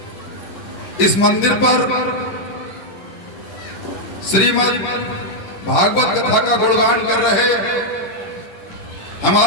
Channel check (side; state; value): right; late; 11 ms